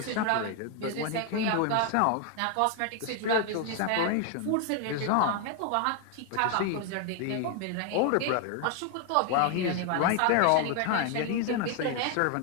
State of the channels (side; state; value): both; different; correlation 0.00